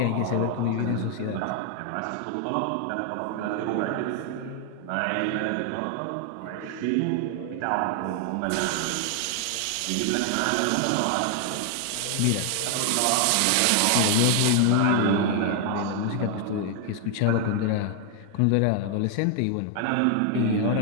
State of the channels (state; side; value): different; both; correlation 0.00